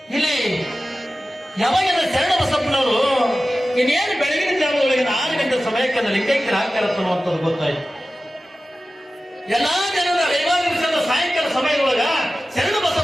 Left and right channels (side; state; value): both; normal; correlation 0.95